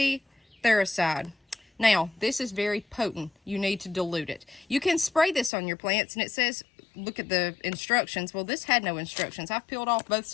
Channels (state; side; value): drops out; right; at 5.5 s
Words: Thericide. Now, this is very potent. You need to dilute it. You can spray this on your plants, and it says, look at the instructions. Well, this had no instructions. I've peeled off both